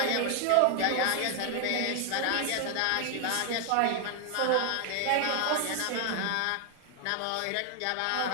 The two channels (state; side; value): different; both; correlation 0.00